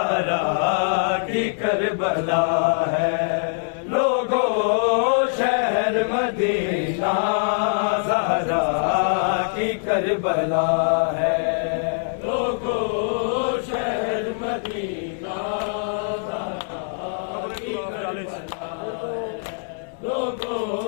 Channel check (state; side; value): silent; right; digital silence